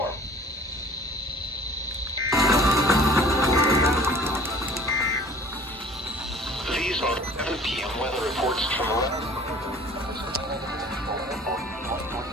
These are 7 p.m. weather reports from around.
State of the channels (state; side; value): normal; both; correlation 0.48